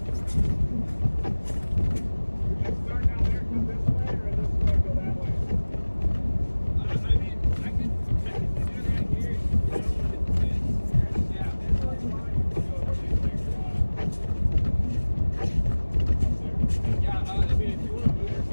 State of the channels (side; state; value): both; inverted; correlation -1.00